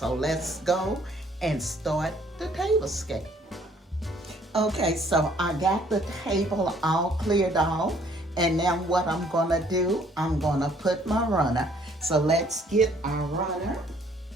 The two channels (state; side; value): normal; both; correlation 0.61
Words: let's go and start the table scape. Okay, so I got the table all cleared off, and now what I'm gonna do, I'm gonna put my runner. So let's get our runner.